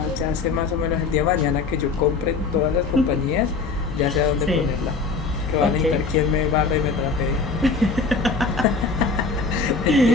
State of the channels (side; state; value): right; quieter; 4.4 dB